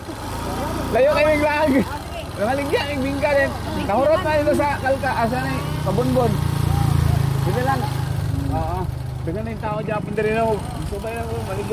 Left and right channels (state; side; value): identical; both; correlation 1.00